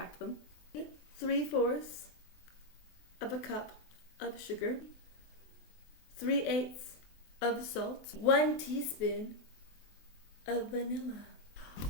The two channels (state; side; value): late; right; 23 ms